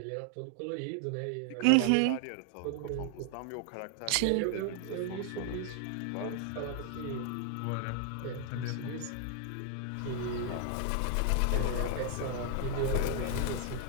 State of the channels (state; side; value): different; both; correlation 0.00